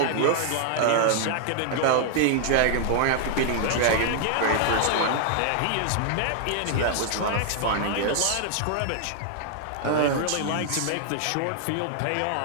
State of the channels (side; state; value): both; different; correlation 0.00